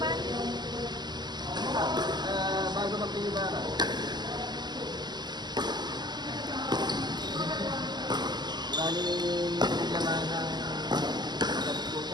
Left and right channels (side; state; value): left; late; 0.21 ms